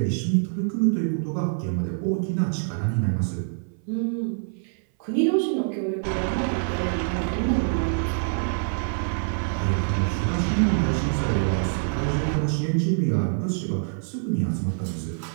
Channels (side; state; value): left; silent; 58 dB below the other